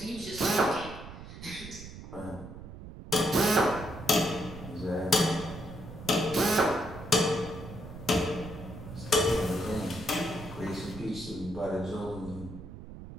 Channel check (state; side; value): noise; right; rumble, 12 dB below the sound